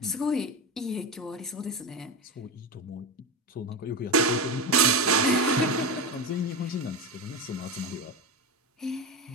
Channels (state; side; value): normal; both; correlation 0.19